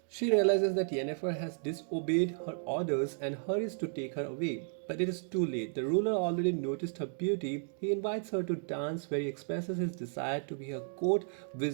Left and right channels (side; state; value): left; silent; digital silence